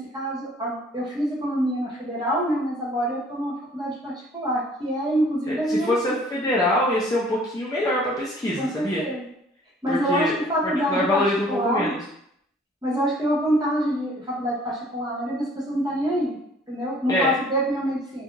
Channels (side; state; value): both; normal; correlation 0.55